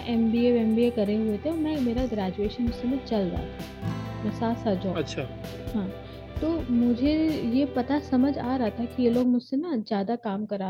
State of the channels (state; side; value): identical; both; correlation 1.00